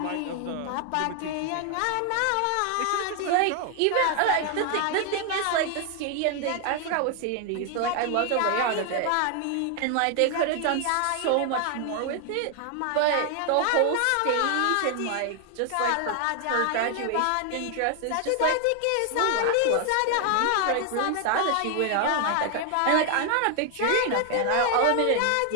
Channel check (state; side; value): different; both; correlation 0.00